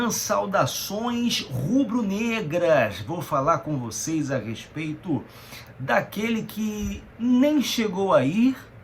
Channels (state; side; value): identical; both; correlation 1.00